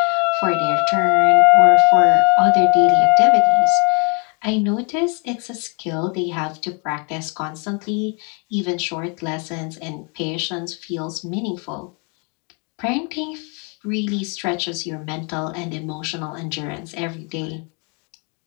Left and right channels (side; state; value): right; quieter; 34.8 dB